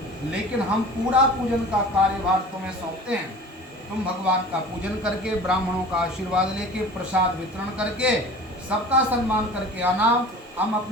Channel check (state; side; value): normal; both; correlation 0.41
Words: लेकिन हम पूरा पूजन का कार्यभार तुम्हें सौंपते हैं। तुम भगवान का पूजन करके, ब्राह्मणों का आशीर्वाद लेके, प्रसाद वितरण करके, सबका सम्मान करके आना। हम